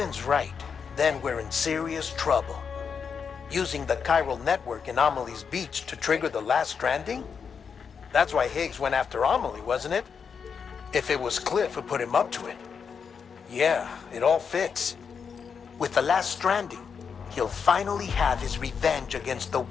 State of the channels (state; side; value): quieter; right; 6.3 dB